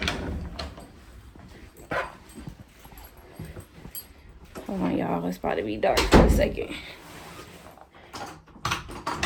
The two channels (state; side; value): identical; both; correlation 1.00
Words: Hold on, y'all. It's about to be dark for a second.